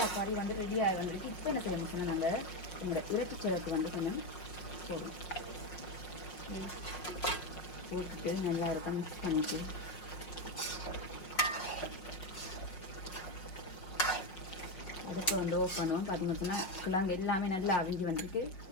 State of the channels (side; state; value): right; late; 5.5 ms